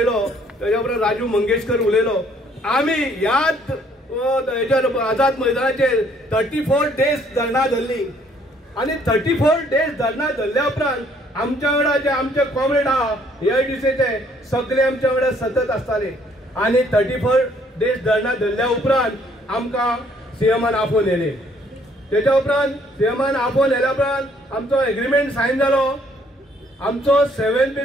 तेज्या उपरांत राजू मंगेशकर उलयलो। आमी ह्याच आझाद मैदानाचेर 34 डेज धरणा धरली आनी 34 डेज धरणा धरल्या उपरांत आमच्या वांगडा जे आमचे कॉम्रेड आहा एआयटीसीचे सगळे आमच्या वांगडा सतत आसताले। आनी 34 डेज धरणा धरल्या उपरांत आमकां सीएमान आपोवन येयले। तेच्या उपरांत सीएमान आपोवन येयल्या उपरांत आमचो एग्रीमेंट सायन जालो। आमचो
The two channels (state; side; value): normal; both; correlation 0.64